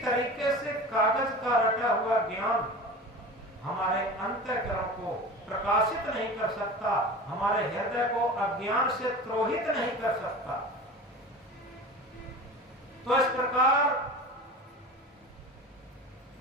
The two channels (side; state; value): both; normal; correlation 0.34